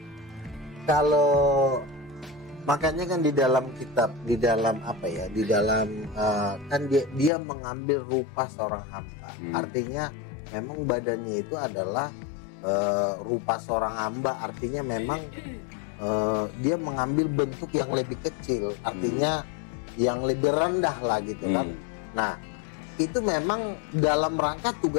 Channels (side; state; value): right; drops out; at 7.3 s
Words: Kalau makanya kan di dalam kitab, di dalam apa ya? Di dalam kan dia mengambil rupa seorang hamba. Artinya memang badannya itu adalah rupa seorang hamba. Artinya memang dia mengambil bentuk yang lebih kecil, artinya yang lebih rendah lah gitu kan. Nah itu memang dalam rangka